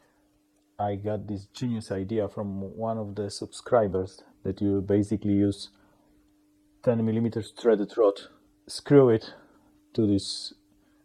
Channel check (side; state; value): both; identical; correlation 1.00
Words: I got this genius idea from one of the subscribers that you basically use 10mm threaded rod, screw it to this